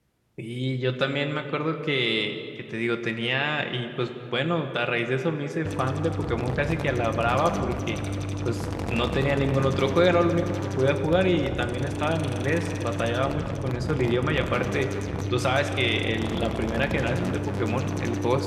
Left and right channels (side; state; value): both; identical; correlation 1.00